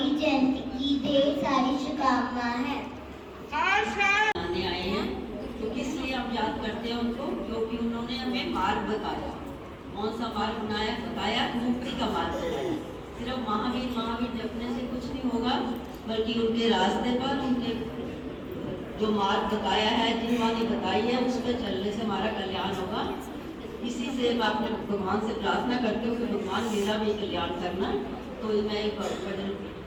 जयंती की ढेर सारी शुभकामनाएं हैं। आने आए हैं तो किस लिए हम याद करते हैं उनको, क्योंकि उन्होंने हमें मार्ग बताया। कौन सा मार्ग बताया? मुक्ति का मार्ग बताया। सिर्फ महावीर महावीर जपने से कुछ नहीं होगा, बल्कि उनके रास्ते पर उनके जो मार्ग बताया है, जिनवानी बताई है, उस पर चलने से हमारा कल्याण होगा। इसी से मैं अपने भगवान से प्रार्थना करती हूँ कि भगवान मेरा भी कल्याण करना। तो मैं एक भजन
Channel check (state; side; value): identical; both; correlation 1.00